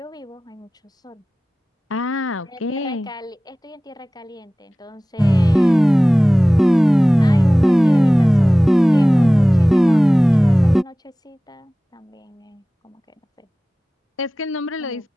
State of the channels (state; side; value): normal; both; correlation 0.98